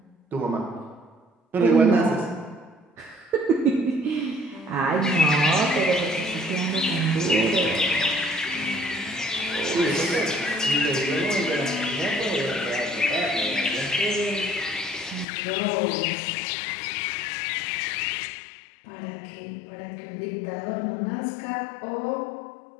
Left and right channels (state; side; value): drops out; right; at 15.2 s